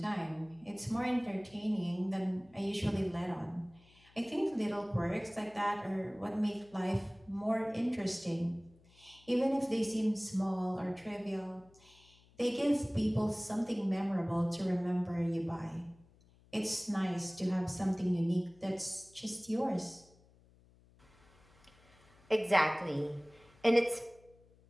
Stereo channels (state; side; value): noise; left; hum, 28 dB below the sound